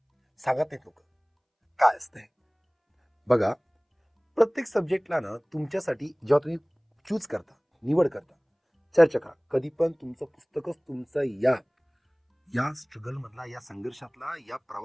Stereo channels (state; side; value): identical; both; correlation 1.00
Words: सांगत नाहीत लोक काय असतंय. बघा, प्रत्येक सब्जेक्टला ना तुमच्यासाठी जेव्हा तुम्ही चूज करता, निवड करता, चर्चा करा, कधी पण तुमचं पुस्तकच तुमचं या स्ट्रगल मधला, या संघर्षातला, या